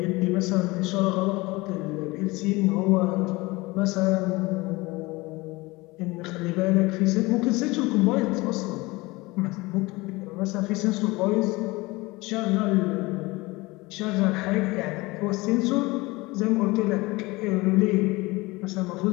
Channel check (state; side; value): quieter; right; 22.4 dB